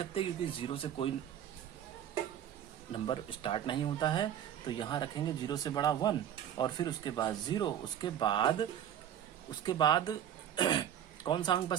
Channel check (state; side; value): quieter; left; 10.2 dB